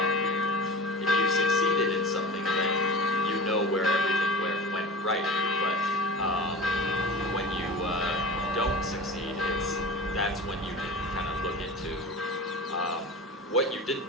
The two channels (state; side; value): normal; both; correlation 0.33